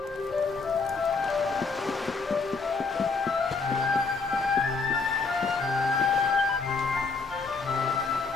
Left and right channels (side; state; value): right; quieter; 4.4 dB